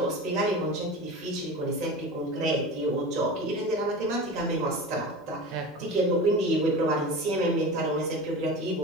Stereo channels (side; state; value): both; normal; correlation 0.31